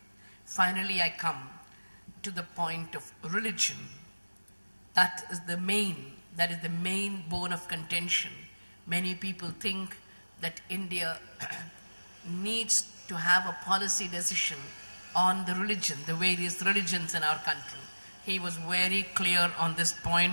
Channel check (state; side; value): inverted; both; correlation -1.00